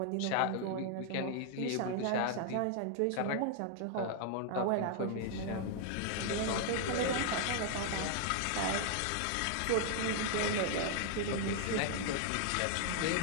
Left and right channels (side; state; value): both; different; correlation 0.00